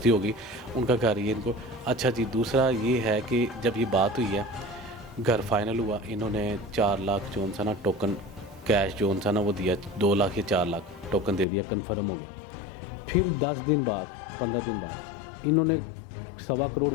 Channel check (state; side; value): drops out; right; at 11.5 s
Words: होगी, उनका घर ये इनको। अच्छा जी, दूसरा ये है कि जब ये बात हुई है, घर फाइनल हुआ, इन्होंने 4 लाख जो सा ना टोकन कैश जो था ना वो दिया 2 लाख या 4 लाख टोकन दे दिया, कन्फर्म हो गया। फिर 10 दिन बाद 15 दिन बाद इन्होंने 1.25 करोड़